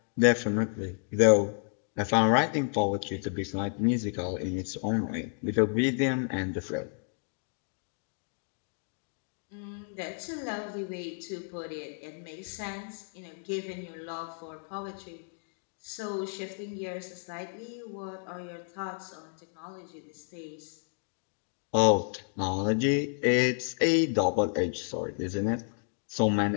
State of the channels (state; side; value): silent; right; 57 dB below the other